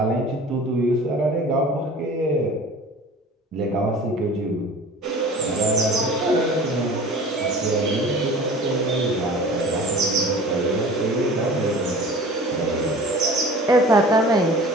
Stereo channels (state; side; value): normal; both; correlation 0.42